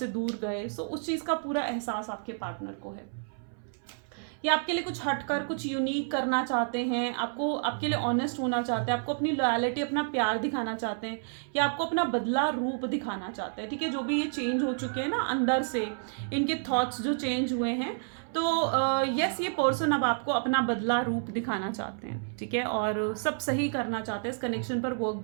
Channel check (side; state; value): left; silent; 58 dB below the other